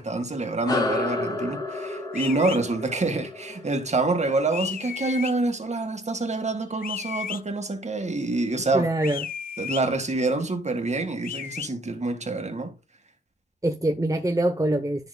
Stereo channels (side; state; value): both; normal; correlation 0.60